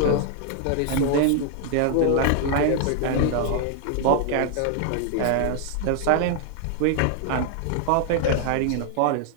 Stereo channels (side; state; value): both; different; correlation 0.00